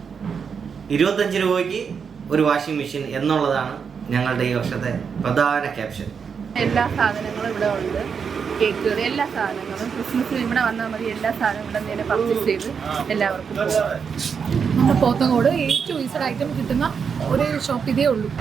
25 രൂപയ്ക്ക് ഒരു വാഷിംഗ് മെഷീൻ എന്നുള്ളതാണ് ഞങ്ങളുടെ ഈ വർഷത്തെ പ്രധാന ക്യാപ്ഷൻ. എല്ലാ സാധനങ്ങളും ഇവിടെ ഉണ്ട്. കേക്ക്, എല്ലാ സാധനങ്ങളും ക്രിസ്മസിന് ഇവിടെ വന്നാൽ മതി. എല്ലാ സാധനവും ഇവിടെ നിന്ന് പർച്ചേസ് ചെയ്ത് എല്ലാവർക്കും നമ്മുടെ പോത്തങ്കോട് ഏറ്റവും ഈസഡ് ഐറ്റം കിട്ടുന്ന ഒരു ഷോപ്പ് ഇതേ ഉള്ളൂ.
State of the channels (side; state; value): left; quieter; 6.4 dB